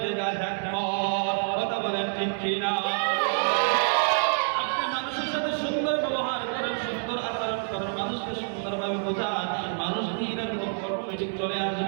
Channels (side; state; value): left; silent; 60 dB below the other